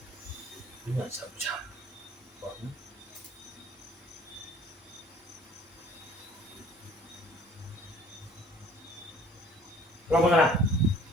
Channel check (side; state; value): both; normal; correlation 0.53